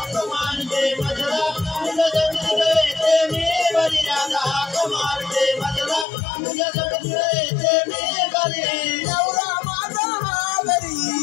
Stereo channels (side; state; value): right; drops out; at 6.1 s